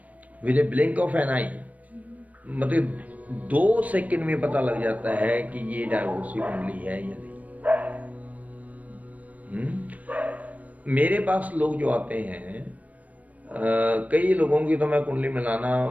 With a blink of an eye, मतलब 2 सेकंड में पता लग जाता है कि ये डाइवोर्स की कुंडली है या नहीं। मेरे पास लोग जो आते हैं, कई लोगों की तो मैं कुंडली मिलाना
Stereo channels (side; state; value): left; late; 0.074 ms